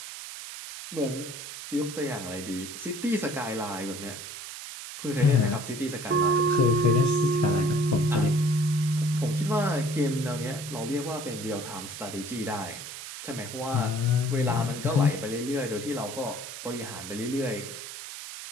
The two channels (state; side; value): noise; right; hiss, 10 dB below the sound